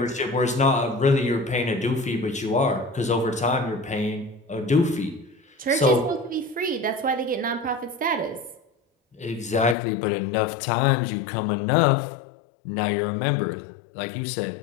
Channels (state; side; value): drops out; right; at 9.8 s